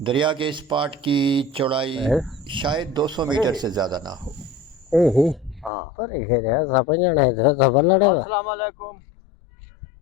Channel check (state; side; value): drops out; right; at 5.7 s